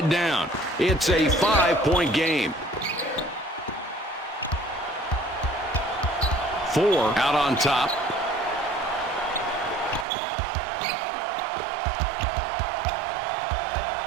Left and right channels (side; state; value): left; drops out; at 10.1 s